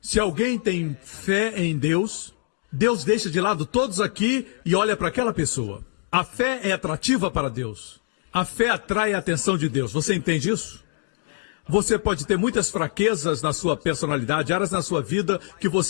se alguém tem fé em Deus, Deus deixa de lado todos aqui e olha para aquela pessoa. A fé é atrativa para Deus. A fé atrai a atenção de Deus. Você entende isso? Você pode ter muitas fraquezas na sua personalidade, áreas na sua vida que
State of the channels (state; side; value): silent; right; digital silence